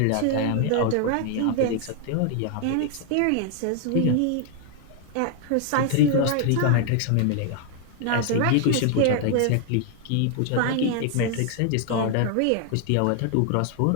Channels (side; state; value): both; different; correlation 0.00